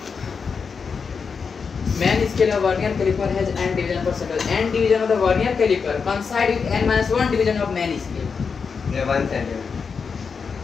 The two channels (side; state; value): right; quieter; 5.6 dB